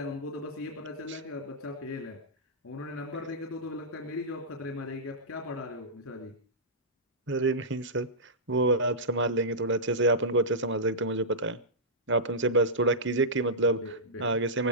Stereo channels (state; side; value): normal; both; correlation -0.15